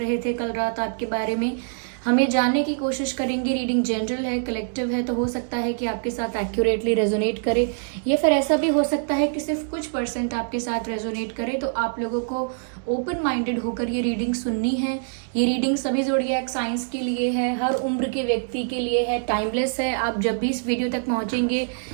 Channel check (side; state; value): left; silent; digital silence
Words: थे कल रात आपके बारे में। हमें जानने की कोशिश करेंगे। रीडिंग जनरल है, कलेक्टिव है, तो हो सकता है कि आपके साथ एक्यूरेटली रेजोनेट करे, या फिर ऐसा भी हो सकता है कि सिर्फ कुछ परसेंट आपके साथ रेजोनेट करे। तो आप लोगों को ओपन माइंडेड होकर ये रीडिंग सुननी है। ये रीडिंग सभी ज़ोडिएक साइंस के लिए है, हर उम्र के व्यक्ति के लिए है, टाइमलेस है। आप जब भी इस वीडियो तक पहुंचेंगे